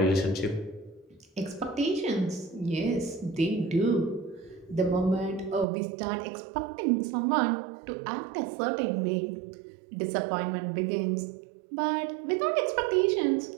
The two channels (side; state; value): left; drops out; at 5.7 s